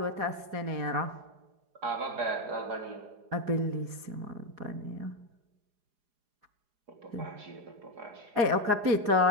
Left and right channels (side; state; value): left; late; 4.8 ms